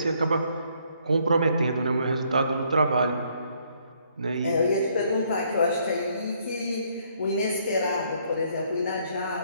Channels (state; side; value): inverted; both; correlation -0.68